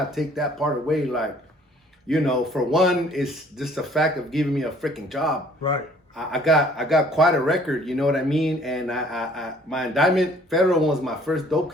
take that part away. Like, you know, for one, it's just the fact of giving me a freaking job. Right. I got quite a record, you know what I mean? And my indictment, federal one, was my first dope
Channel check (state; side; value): normal; both; correlation 0.57